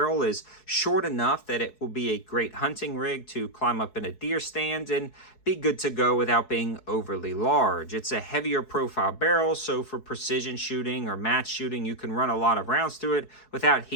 is short enough that it will be a great hunting rig to climb up in a deer stand and be good to go without being overly large. It's a heavier profile barrel, so for precision shooting or match shooting, you can run a lot of rounds through it without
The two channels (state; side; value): late; right; 4.7 ms